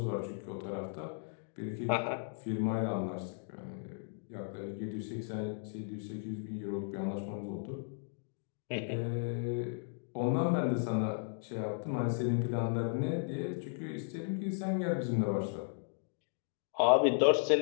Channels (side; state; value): right; silent; digital silence